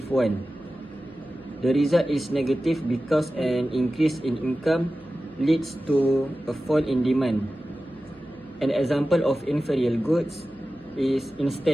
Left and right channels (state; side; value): noise; right; hum, 28 dB below the sound